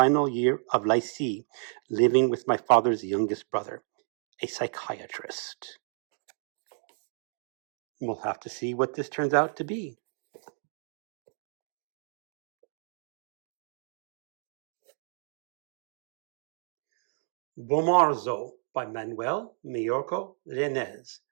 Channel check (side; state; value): left; silent; 57 dB below the other